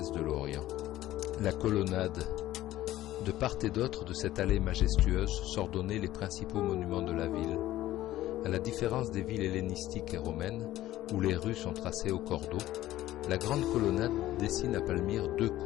de l'Orient. La colonnade. De part et d'autre de cette allée majestueuse s'ordonnaient les principaux monuments de la ville. À la différence des villes hellénistiques et romaines, où les rues sont tracées au cordeau, la grande colonnade dessine à Palmyre 2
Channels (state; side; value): quieter; right; 14.7 dB